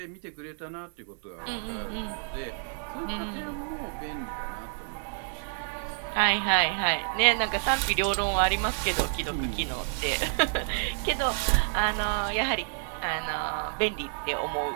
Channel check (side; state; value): left; silent; 58 dB below the other